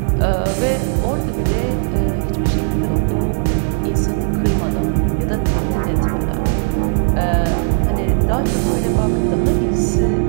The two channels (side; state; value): left; silent; 55 dB below the other